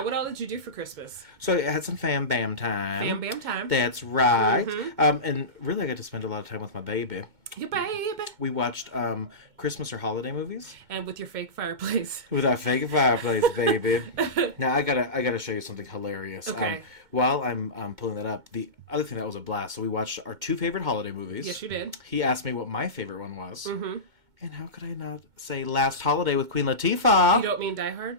What all did you do for Christmas? So I had some fam bam time. Bam bam time. That's right. And really, I got to spend a lot of time with my baby. Your baby. We watched Christmas or holiday movies And with your fake fireplace. with our fake fireplace, baby. Now I gotta show you something hilarious. Okay. While I'm pulling that up, the other thing that was a blast. So we watched our 2 favorite holiday movies. Yes, you did. He asked me what my favorite one was. And how could I not say Last Holiday with Queen Latifah? You don't mean Die Hard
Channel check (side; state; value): left; late; 2.2 ms